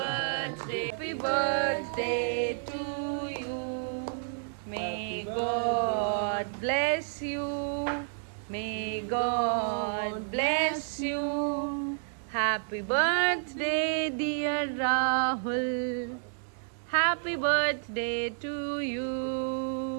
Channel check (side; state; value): left; silent; digital silence